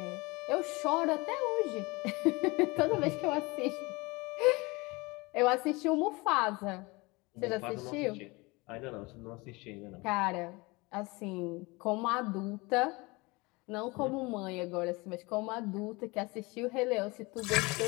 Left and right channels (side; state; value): right; quieter; 24.8 dB